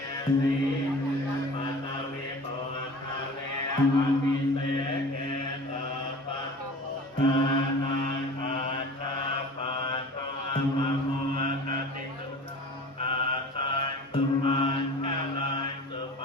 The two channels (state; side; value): normal; both; correlation 0.40